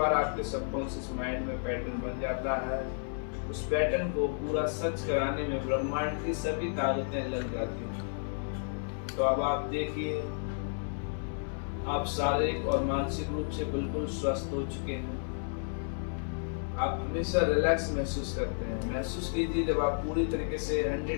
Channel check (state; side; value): silent; right; digital silence